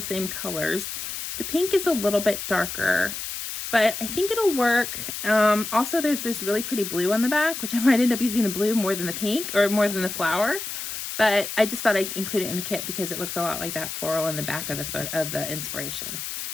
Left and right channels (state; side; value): noise; left; hiss, 6 dB below the sound